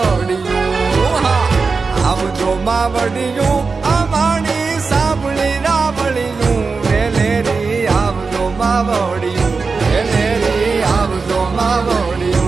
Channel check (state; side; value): quieter; left; 4.6 dB